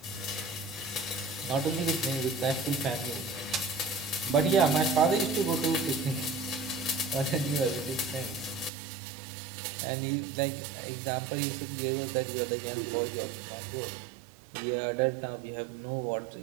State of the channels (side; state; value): left; drops out; at 8.7 s